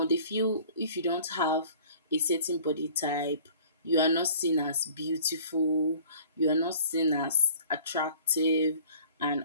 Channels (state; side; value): inverted; both; correlation -0.50